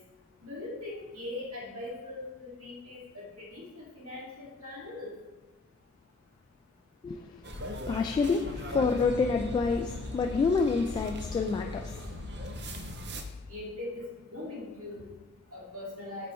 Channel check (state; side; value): quieter; right; 3.7 dB